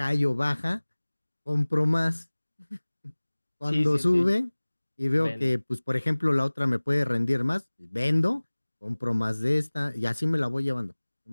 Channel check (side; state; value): both; inverted; correlation -1.00